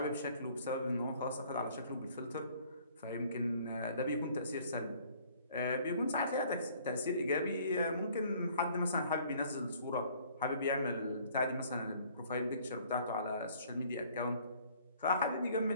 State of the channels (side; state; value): both; inverted; correlation -0.57